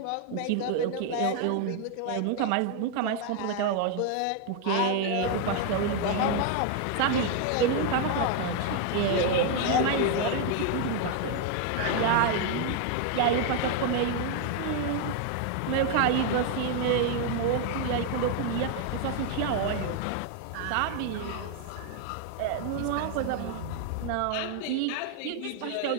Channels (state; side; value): different; both; correlation 0.00